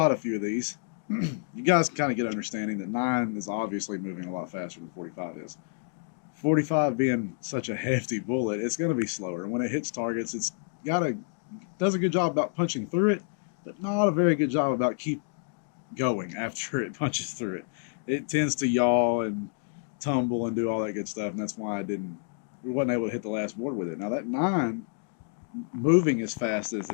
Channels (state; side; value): silent; right; 58 dB below the other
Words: a few of these, you guys can kind of get an understanding that 9 is obviously moving a lot faster than 45 is. 45 being such a hefty bullet, it's going to be slower. And when it hits targets, it's does a good job about punching through it, but not a very good job about keep going after it punches through it. It tends to yaw and tumble and do all that good stuff, and that's why we wasn't able to hit the last board with it. Now that 9, moving as fast as